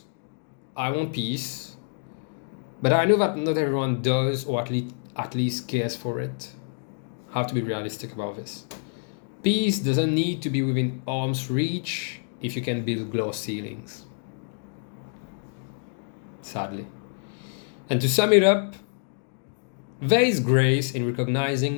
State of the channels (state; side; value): silent; right; digital silence